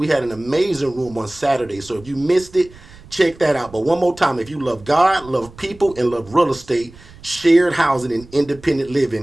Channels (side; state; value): right; noise; rumble, 21 dB below the sound